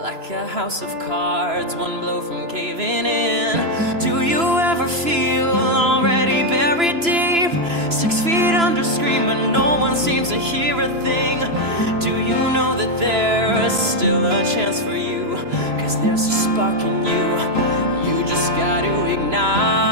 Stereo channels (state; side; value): late; left; 3.0 ms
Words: like a house of cards, one blow from caving in? Do you ever feel already buried deep, 6 feet under, screaming, no one seems to hear a thing? Do you know that there is still a chance for you, 'cause there's a spark in you? You just gotta